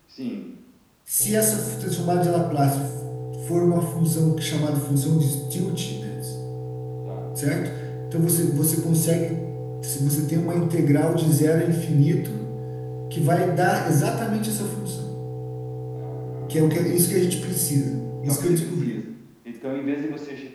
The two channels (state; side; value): identical; both; correlation 1.00